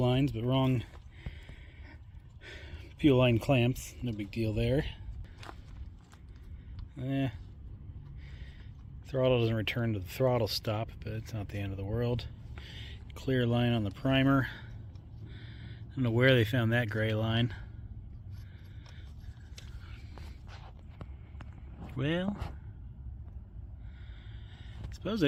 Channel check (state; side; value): identical; both; correlation 1.00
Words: but wrong fuel line clamps. No big deal there. Throttle doesn't return to the throttle stop, but it's not the end of the world. Clear line on the primer. I don't know where they found that gray line. Well, I suppose it